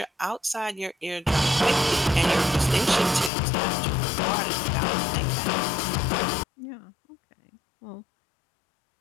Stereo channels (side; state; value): right; drops out; at 3.3 s